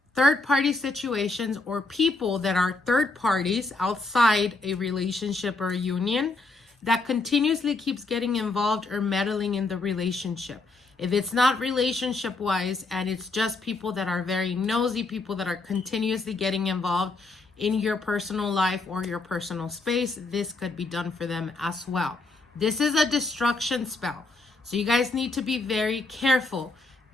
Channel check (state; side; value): quieter; right; 3.4 dB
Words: third party situations or people that are third parties outside a relationship or a union that continuously keeps getting involved or meddling in the relationship. If it's not relationship wise and it's just people that are very nosy, people that are continuously getting involved in your personal life or your personal space, this could be done for them as well. This is a destruction spell, so you guys need to be very careful.